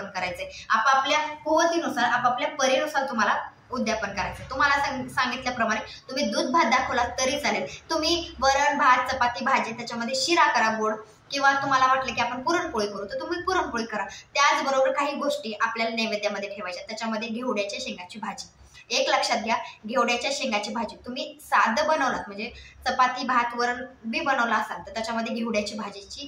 करायचंय. आपापल्या कुवतीनुसार, आपापल्या परीनुसार तुम्हाला उद्यापन करायचं. तुम्हाला सांगितल्याप्रमाणे तुम्ही दूध भात दाखवला तरी चालेल. तुम्ही वरण भात चपाती भाजी त्याच्यामध्ये शिरा करा गोड, किंवा तुम्हाला वाटलं की आपण पुरणपोळी करू तर तुम्ही पुरणपोळी करा. त्याचबरोबर काही गोष्टी आपल्याला नैवेद्यामध्ये ठेवायच्या. त्याच्यामध्ये घेवड्याच्या शेंगाची भाजी. एक लक्षात घ्या, घेवड्याच्या शेंगाची भाजी तुम्ही साधं बनवलात म्हणजे चपाती भात वरण बी बनवला असाल तर त्याच्यामध्ये घेवड्याची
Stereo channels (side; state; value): both; identical; correlation 1.00